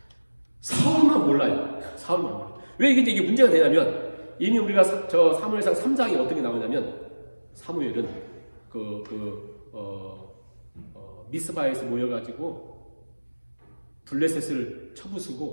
사울만 몰라요. 사울만 몰라요. 왜 이게 문제가 되냐면 이미 우리가 사무엘상 3장에 어떤 게 나오냐면 사무엘은 미스바에서 모여가지고 블레셋을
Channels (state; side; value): inverted; both; correlation -1.00